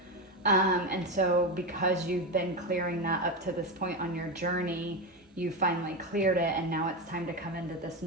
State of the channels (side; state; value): both; normal; correlation 0.15